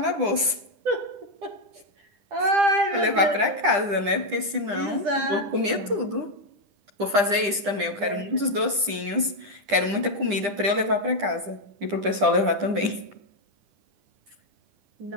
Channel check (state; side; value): late; left; 10 ms